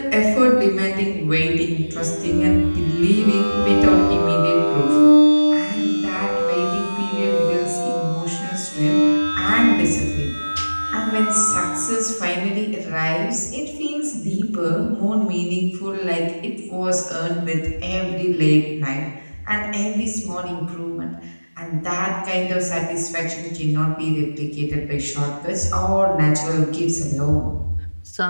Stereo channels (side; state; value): both; inverted; correlation -1.00